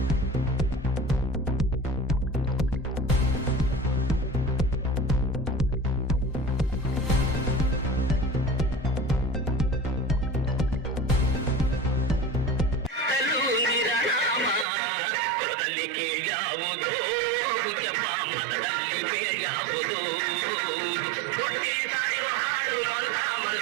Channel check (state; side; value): drops out; left; at 14.7 s